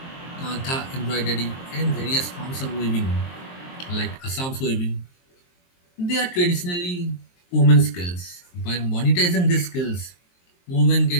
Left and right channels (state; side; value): late; right; 23 ms